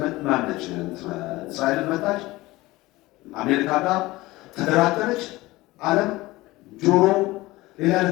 ማነች? እስራኤልን መታች። አሜሪካ ጋር ተደራደረች። ዓለም ጆሮ ሌላ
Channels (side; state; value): right; quieter; 19.5 dB